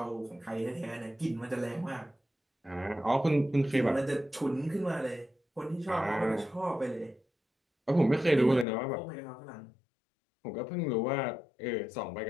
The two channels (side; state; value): right; drops out; at 8.7 s